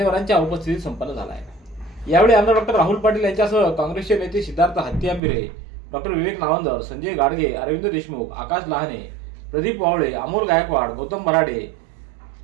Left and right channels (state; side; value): drops out; left; at 5.2 s